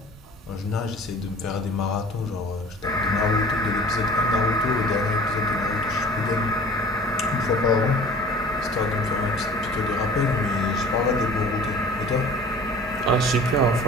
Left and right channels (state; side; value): normal; both; correlation 0.45